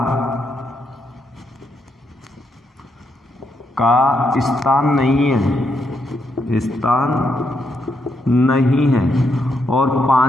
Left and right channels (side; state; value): both; normal; correlation 0.79